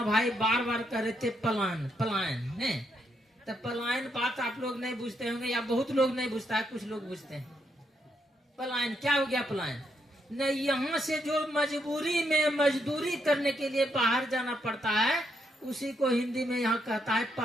भाई बार बार कह रहे थे पलायन पलायन। नहीं तो पलायन बात आप लोग नहीं बुझते होंगे, या बहुत लोग नहीं बुझता है, कुछ लोग बुझते हैं। पलायन क्या हो गया? पलायन नहीं, यहाँ से जो मजबूरी में मजदूरी करने के लिए बाहर जाना पड़ता है, उसी को हिंदी में यहाँ कहता है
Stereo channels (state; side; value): normal; both; correlation 0.77